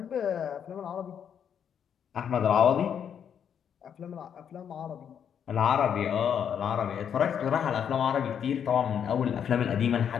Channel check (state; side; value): quieter; right; 8.2 dB